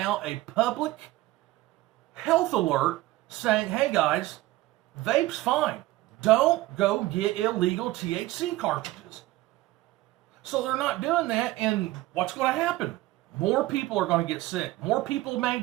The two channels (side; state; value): left; quieter; 17.5 dB